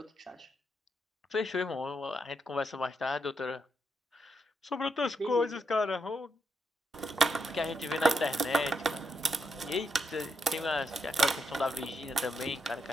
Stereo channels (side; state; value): both; normal; correlation 0.80